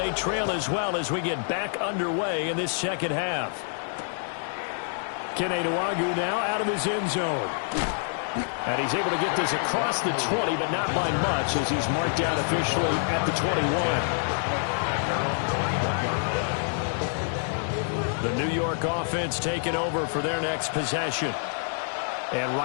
trail as well as we get back underway in this second half. Keneduagu now out of his end zone. And he's able to get this across the 20, but not by much as he's marked down officially at the 21. The New York offense taking over for their next possession. And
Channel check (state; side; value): silent; right; digital silence